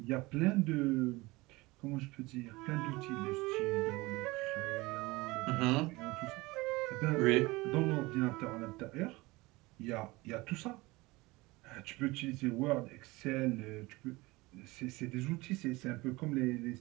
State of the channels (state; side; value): quieter; left; 22.0 dB